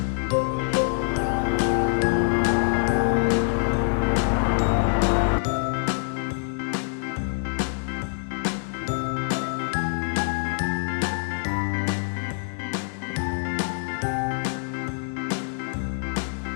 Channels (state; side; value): silent; right; 61 dB below the other